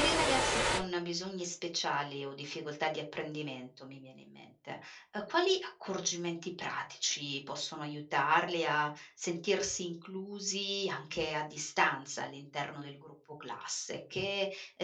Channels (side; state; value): both; identical; correlation 1.00